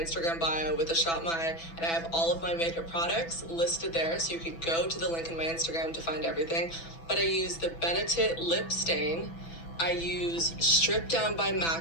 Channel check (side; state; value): right; late; 6.0 ms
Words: bio with a Shop My, and I have all of my makeup products listed there, so you could go to the link in my Instagram to find everything. But I use the Benetint lip stain. I use Strip Down by